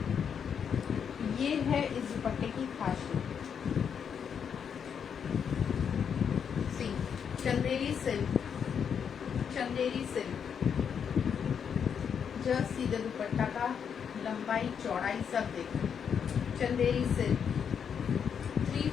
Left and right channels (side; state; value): right; quieter; 7.4 dB